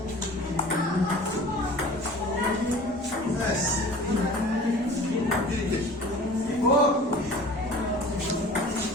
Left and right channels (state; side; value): normal; both; correlation 0.43